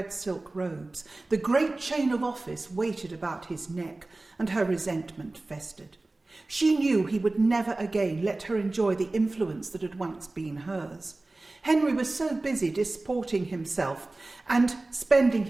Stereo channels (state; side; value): quieter; left; 3.0 dB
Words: silk robes. The great chain of office weighted about his neck, and her resentment festered. She knew he would never again let her enjoy the influence that had once been hers. Henry was so busy disporting himself and spending